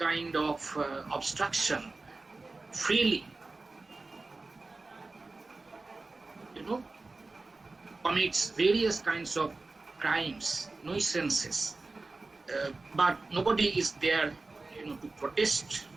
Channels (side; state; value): left; quieter; 3.5 dB